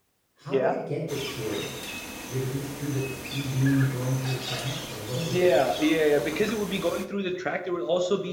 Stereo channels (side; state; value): both; identical; correlation 1.00